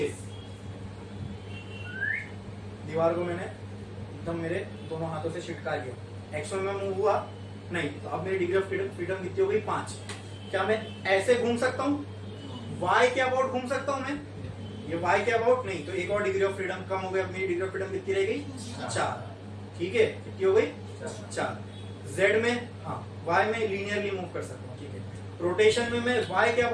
दीवार को मैंने एकदम मेरे दोनों हाथों से छिटका लिया, एक्स में मूव हुआ नहीं, तो अब मेरी डिग्री ऑफ फ्रीडम कितनी हो गई? 5। क्या मैं ऐसे घूम सकता हूँ? वाई के अबाउट घूम सकता हूँ मैं? ये वाई के अबाउट नहीं, तो एक और डिग्री ऑफ फ्रीडम कम हो गई। अब मेरी डिग्री ऑफ फ्रीडम कितनी रह गई? 4। ठीक है, कितनी हो गई? 4। जेड में, हाँ, वाई में लीनियरली मूव कर सकता हूँ। ठीक है, रोटेशन में मैं वाई के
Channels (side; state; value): both; identical; correlation 1.00